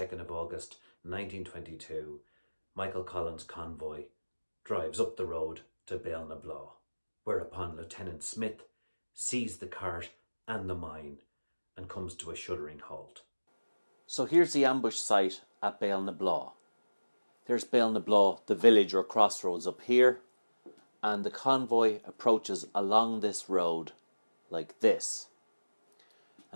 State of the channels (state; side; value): inverted; both; correlation -1.00